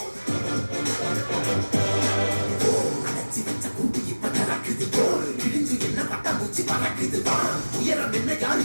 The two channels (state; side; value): inverted; both; correlation -1.00